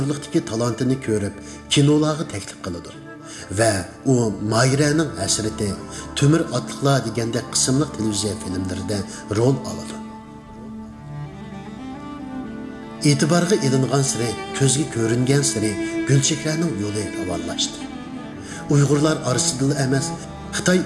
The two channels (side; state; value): both; identical; correlation 1.00